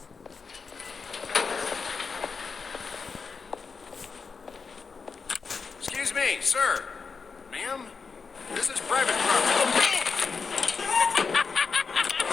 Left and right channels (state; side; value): quieter; right; 5.1 dB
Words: Excuse me, sir. Ma'am, this is private property.